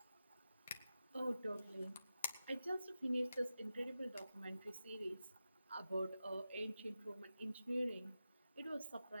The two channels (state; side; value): inverted; both; correlation -0.92